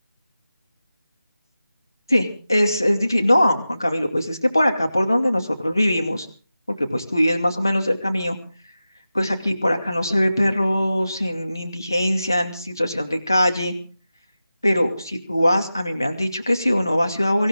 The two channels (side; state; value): both; inverted; correlation -0.93